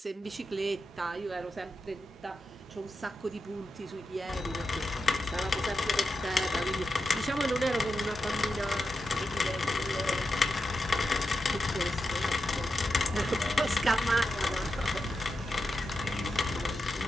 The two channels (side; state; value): both; normal; correlation 0.89